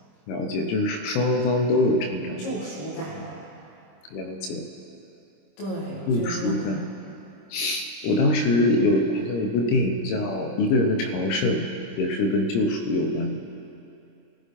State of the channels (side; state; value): right; late; 26 ms